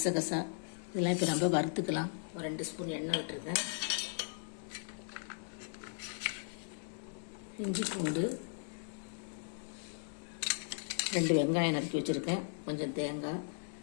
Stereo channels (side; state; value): right; silent; digital silence